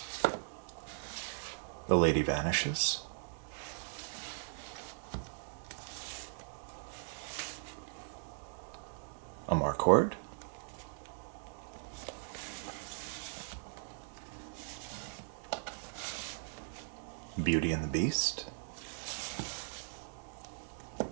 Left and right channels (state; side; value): silent; left; digital silence